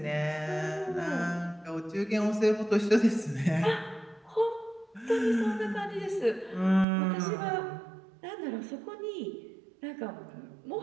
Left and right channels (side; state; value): left; drops out; at 6.9 s